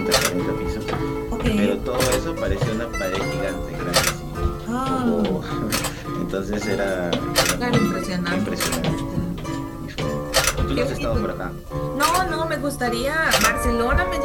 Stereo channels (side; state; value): both; identical; correlation 1.00